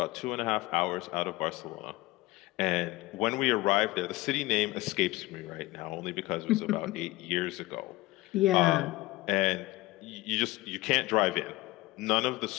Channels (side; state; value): right; quieter; 19.6 dB